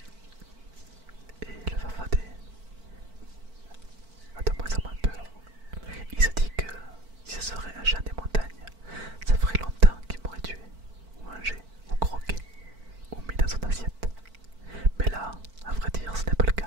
Et le farfadet a de moins en moins peur. Il se dit que si ce serait un chien des montagnes, ça ferait longtemps qu'il m'aurait tué, ou mangé, ou croqué, ou mis dans son assiette. Mais là, à vrai dire, ce n'est pas le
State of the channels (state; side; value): late; left; 4.5 ms